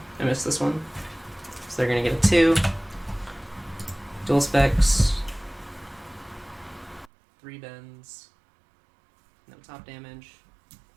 I missed this one. So they're gonna get a 2. Dual specs, 3 bends, no top damage,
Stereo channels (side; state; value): left; drops out; at 7.1 s